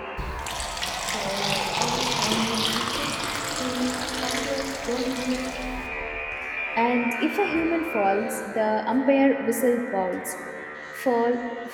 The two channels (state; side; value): identical; both; correlation 1.00